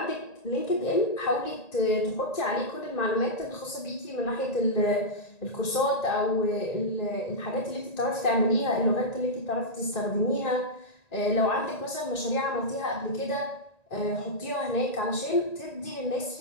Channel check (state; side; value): late; right; 1.9 ms